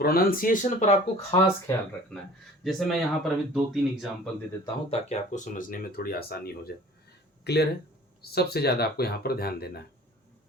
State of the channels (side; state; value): both; normal; correlation 0.46